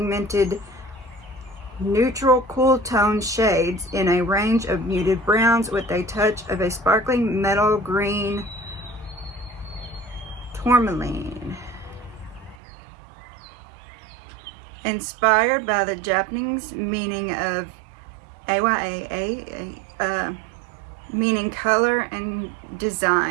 neutral cool tone shades in a range of muted browns with a touch of a sparkling metal green tourmaline. Inspired by the Japanese meaning of Ayana, meaning color and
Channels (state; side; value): drops out; left; at 12.6 s